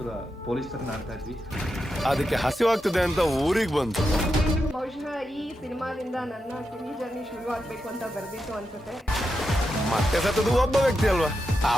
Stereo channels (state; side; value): normal; both; correlation 0.87